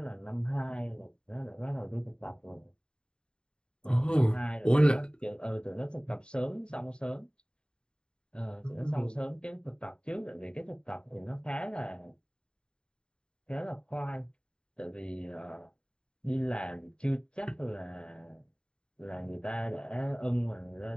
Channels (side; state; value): right; late; 0.050 ms